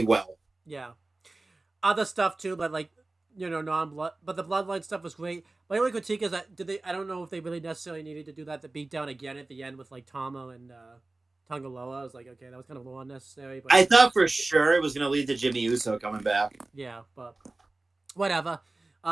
well. Yeah. Other stuff too, but, like, non-blood, but the Bloodline stuff was great. My only critique is that I don't know if they really necessarily needed to do that, the beatdown again at the end with, like, Tama and Tangaloa. I was like, okay, that was kind of a little unnecessary. But I thought for sure it was going to lead to Jimmy Uso coming back. yeah, but whatever.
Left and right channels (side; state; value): left; quieter; 3.1 dB